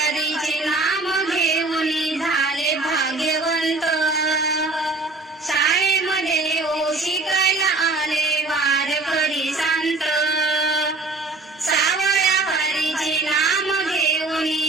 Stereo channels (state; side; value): quieter; left; 3.4 dB